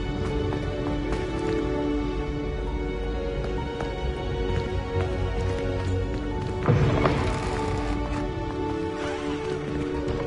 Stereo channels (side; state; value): both; identical; correlation 1.00